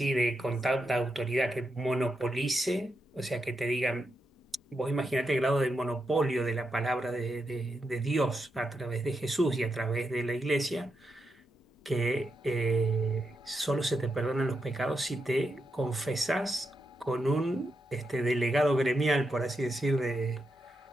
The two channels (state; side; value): normal; both; correlation 0.84